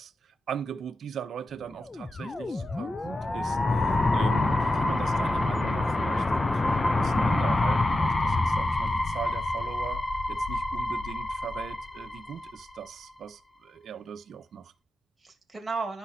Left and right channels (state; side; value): normal; both; correlation 0.90